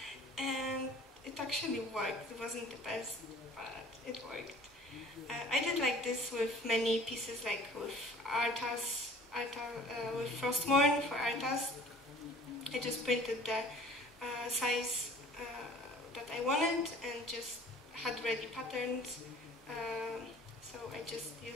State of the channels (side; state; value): both; normal; correlation 0.49